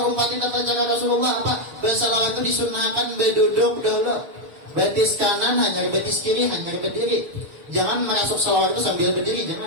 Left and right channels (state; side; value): late; left; 6.3 ms